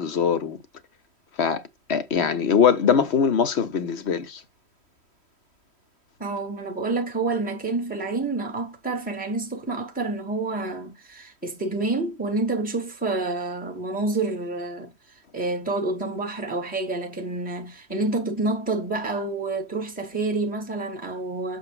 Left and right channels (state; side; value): late; right; 3.1 ms